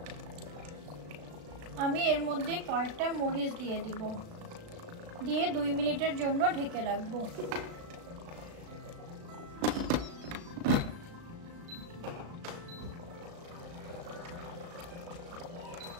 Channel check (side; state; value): left; late; 36 ms